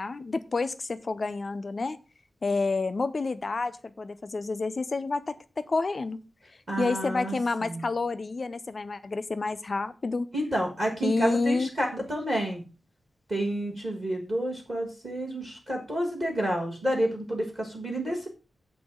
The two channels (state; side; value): normal; both; correlation 0.92